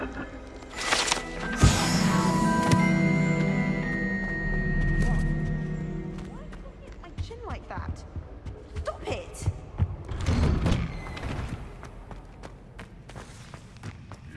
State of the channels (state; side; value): identical; both; correlation 1.00